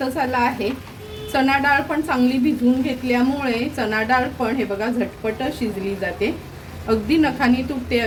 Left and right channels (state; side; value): identical; both; correlation 1.00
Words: आला आहे. चणा डाळ पण चांगली भिजवून घेतल्यामुळे चणा डाळ पण हे बघा झटपट शिजली जाते. अगदी नखानी तुटते